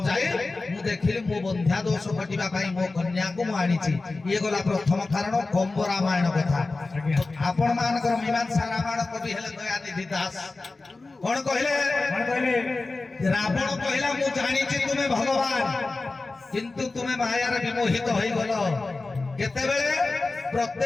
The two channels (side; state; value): right; quieter; 3.5 dB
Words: मु देखिली मो बंध्या दोष कटिबा पई मो कन्या को मु आनिछि। ये गला प्रथम कारण कंब रामायण कथा। आपण मानकर मीमांसा रामायण कवि हेले दयानिधि दास कोन कहले रावण कहला मु जानिछि तुमे भगवान किंतु तुमे मायार विमोहित होई गलो। केतेबेले